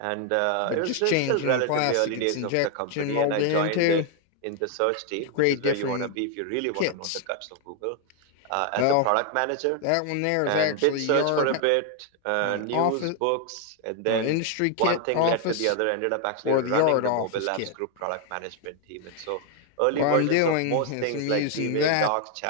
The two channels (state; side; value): different; both; correlation 0.00